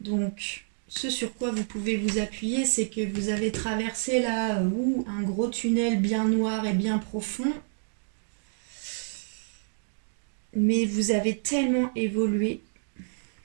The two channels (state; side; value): silent; left; digital silence